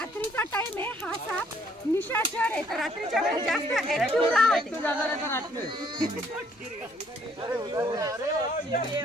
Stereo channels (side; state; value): both; normal; correlation 0.64